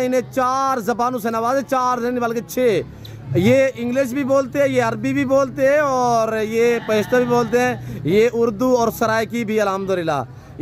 इन्हें 4 ज़बानों से नवाजे, 4 नहीं बल्कि 6। ये इंग्लिश भी बोलते हैं, ये अरबी भी बोलते हैं और ये पश्तो भी बोलते हैं, ये उर्दू और सराइकी भी अल्हम्दुलिल्लाह।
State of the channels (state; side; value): identical; both; correlation 1.00